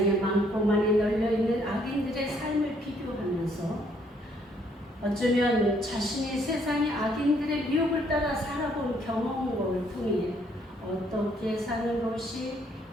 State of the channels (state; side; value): normal; both; correlation 0.67